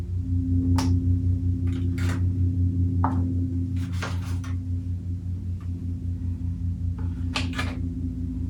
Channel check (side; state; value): both; identical; correlation 1.00